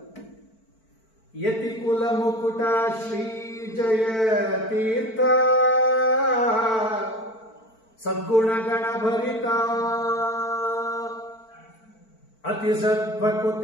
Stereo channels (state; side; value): late; right; 4.5 ms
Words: ಯತಿ ಕುಲ ಮುಕುಟ ಶ್ರೀ ಜಯ ತೀರ್ಥ ಸದ್ಗುಣಗಣ ಭರಿತ ಅತಿ